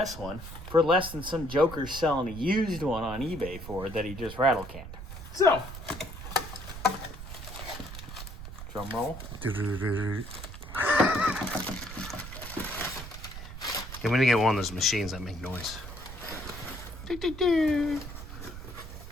one for less than some joker's selling a used one on eBay for that he just rattle canned. So, drum roll. I'm gonna get one of those machines that make noise.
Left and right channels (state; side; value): noise; right; rumble, 11 dB below the sound